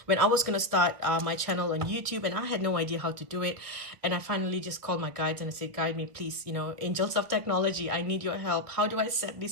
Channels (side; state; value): left; late; 1.6 ms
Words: when I was going to start my channel on YouTube, and I had no idea how to do it, and I finally just called my guides and I said, guide me, please, you know, angels of technology, I need your help. How do I set